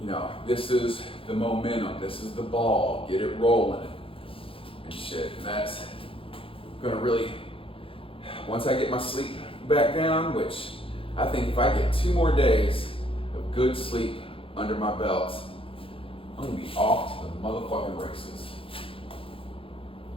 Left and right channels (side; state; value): right; late; 0.26 ms